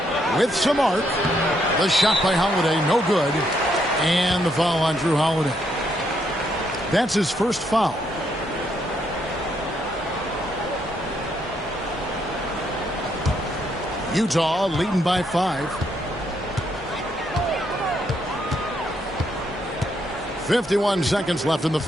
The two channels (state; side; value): normal; both; correlation 0.75